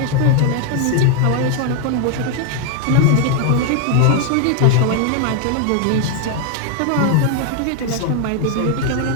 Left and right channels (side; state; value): both; different; correlation 0.00